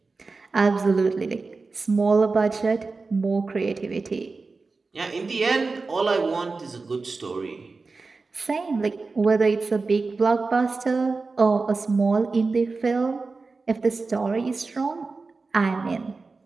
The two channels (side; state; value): left; quieter; 4.0 dB